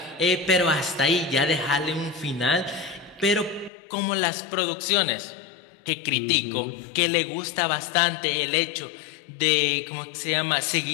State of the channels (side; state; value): right; drops out; at 3.7 s